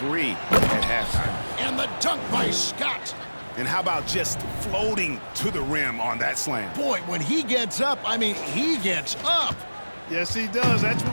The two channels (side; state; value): both; inverted; correlation -1.00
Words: at halftime. And the dunk by Scott. And how about just floating to the rim on that slam? Boy, when he gets up, I mean, he gets up. Yes, he does. That's